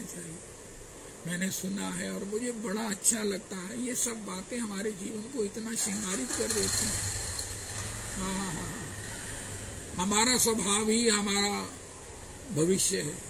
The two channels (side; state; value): both; identical; correlation 1.00